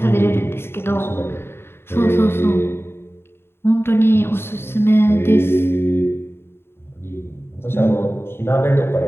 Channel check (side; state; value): right; late; 0.11 ms